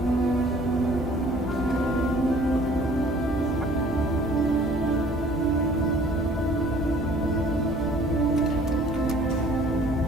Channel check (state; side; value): normal; both; correlation 0.54